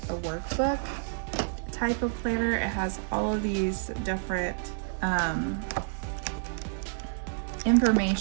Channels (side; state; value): left; silent; digital silence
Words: a workbook type of planner. It has all of these different